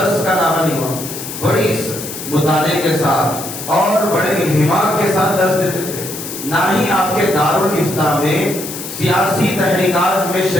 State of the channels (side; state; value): left; noise; hiss, 9 dB below the sound